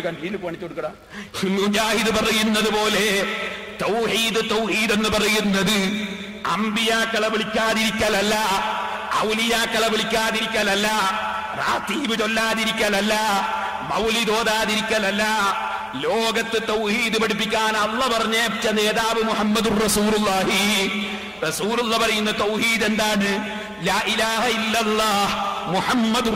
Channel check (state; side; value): identical; both; correlation 1.00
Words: മുജാഹിദ് പറയുന്നത് പോലെ തൗഹീദ്, തൗഹീദ് എന്ന് പറയുന്നത് അമ്പിയാക്കളെ വിളിക്കാതിരിക്കലല്ല, ഔലിയാക്കളെ വിളിക്കാതിരിക്കലല്ല, റാത്തീബ് ചൊല്ലാതിരിക്കലല്ല, മൗലിദ് ഓതാതിരിക്കലല്ല. ലോകത്ത് തൗഹീദ് പഠിപ്പിക്കാൻ അല്ലാഹ് പറഞ്ഞേച്ച നേതാവ് മുഹമ്മദുർ റസൂലുള്ളാഹി. റസൂലുള്ള പറയുന്ന തൗഹീദ് എന്താണ്? ലാ ഇലാഹ ഇല്ലല്ലാഹ്